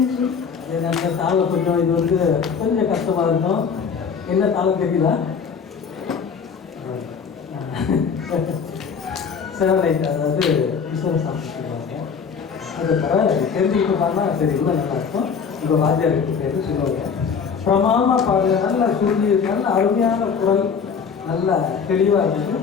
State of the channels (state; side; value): quieter; right; 6.2 dB